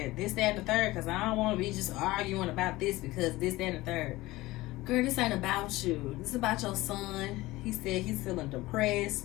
this, that, and the third, because I don't want to be just arguing about this because this, that, and the third. Girl, this ain't about you. This is about your son. He said he's feeling depressed,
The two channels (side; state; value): right; quieter; 19.0 dB